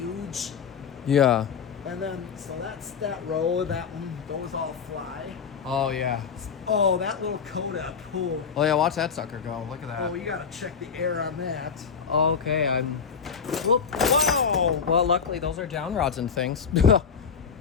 Yeah. And then, so that's that row. That one, those all fly. Oh, yeah. Oh, that little Codep. Oh, Oh, yeah, watch that sucker go. Look at that. oh, you gotta check the air on that. Okay, I'm... Whoop. Whoa! Well, luckily, those are down rods and things.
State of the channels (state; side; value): quieter; right; 6.3 dB